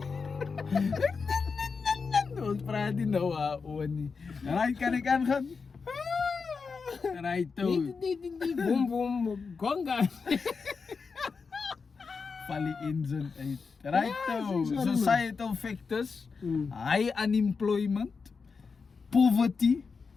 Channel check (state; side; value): quieter; right; 5.0 dB